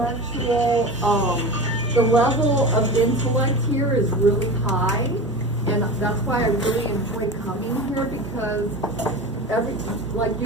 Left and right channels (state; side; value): normal; both; correlation 0.30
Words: the level of intellect here is really high, and that's why I really enjoy coming here because